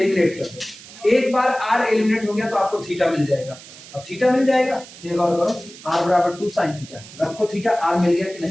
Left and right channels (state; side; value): noise; right; hiss, 18 dB below the sound